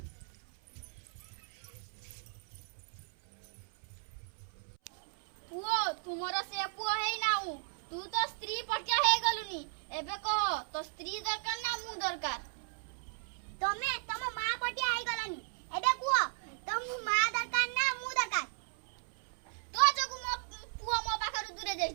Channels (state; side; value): silent; left; 54 dB below the other